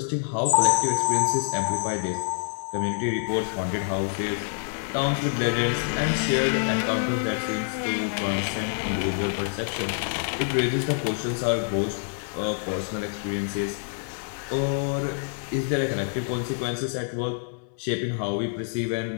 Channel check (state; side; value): silent; right; 60 dB below the other